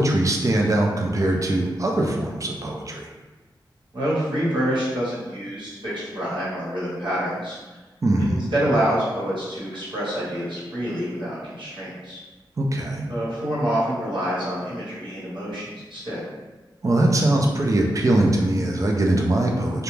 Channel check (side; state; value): both; normal; correlation 0.84